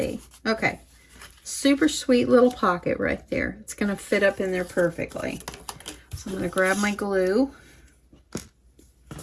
Okay. Super sweet little pocket right there. It's going to fit up in there perfectly. So I'm going to grab my glue.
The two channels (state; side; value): identical; both; correlation 1.00